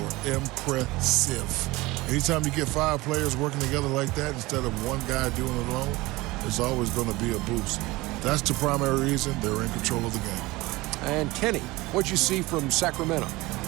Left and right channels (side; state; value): left; quieter; 21.0 dB